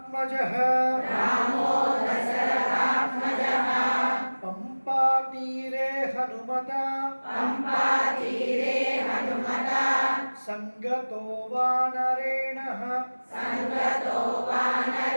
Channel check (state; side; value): inverted; both; correlation -1.00